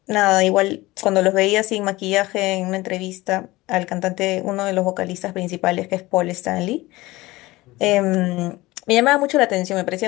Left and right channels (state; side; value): quieter; right; 19.7 dB